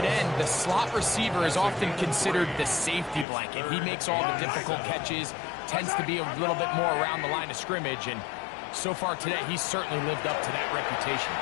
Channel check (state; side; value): drops out; right; at 3.2 s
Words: end, the slot receiver is often considered the safety blanket. He makes all the difficult catches, tends to be a little bit more around the line of scrimmage, and so far today, he's certainly lived up to that reputation.